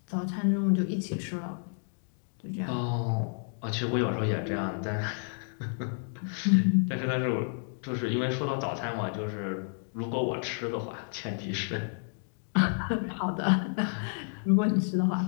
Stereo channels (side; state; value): right; silent; 58 dB below the other